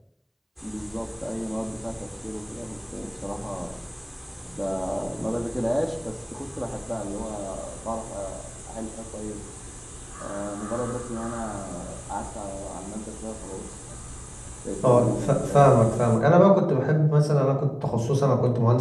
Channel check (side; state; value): both; identical; correlation 1.00